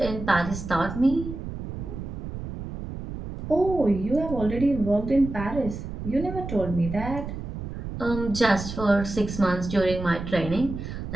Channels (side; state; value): right; noise; rumble, 8 dB below the sound